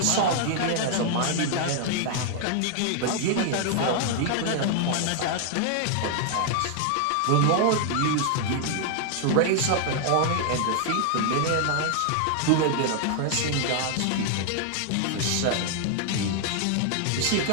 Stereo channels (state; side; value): different; both; correlation 0.00